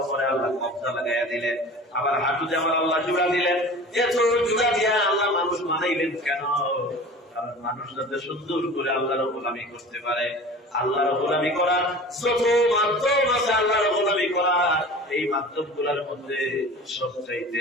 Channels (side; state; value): both; normal; correlation 0.39